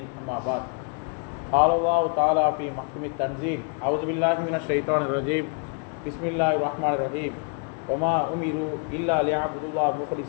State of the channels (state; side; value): quieter; right; 37.2 dB